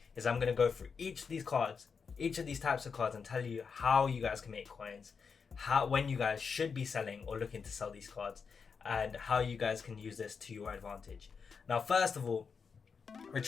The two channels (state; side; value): quieter; right; 5.7 dB